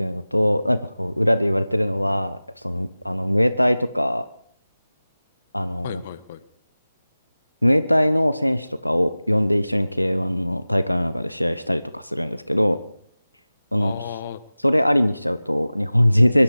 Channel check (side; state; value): both; inverted; correlation -0.98